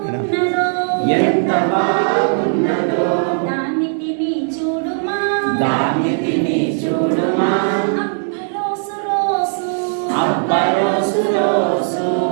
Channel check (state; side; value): silent; left; digital silence